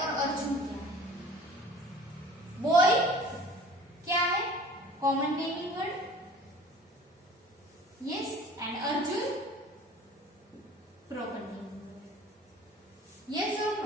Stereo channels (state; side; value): normal; both; correlation 0.46